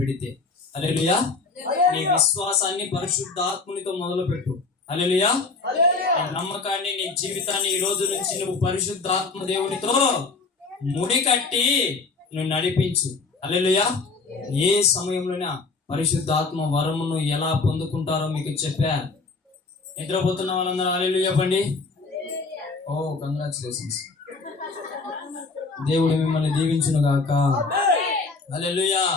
హల్లెలూయా. నీ విశ్వాసాన్ని పరిశుద్ధాత్మునితో మొదలు పెట్టు. హల్లెలూయా. నమ్మకాన్ని, నీ జీవితాన్ని ఈ రోజు నుంచి నువ్వు పరిశుద్ధాత్మ దేవునితో ముడి కట్టి నువ్వు నడిపించు. హల్లెలూయా. ఏ సమయంలోనే పరిశుద్ధాత్మ వరమును ఎలా పొందుకుంటారో మీకు చెప్పా. నిద్రపోతున్న వాళ్ళందరూ హల్లెలూయా చెప్పండి. ఓ కంగ్రాచులేషన్స్. దేవుడు మిమ్మల్ని దీవించును గాక. హల్లెలూయా,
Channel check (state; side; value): quieter; right; 4.1 dB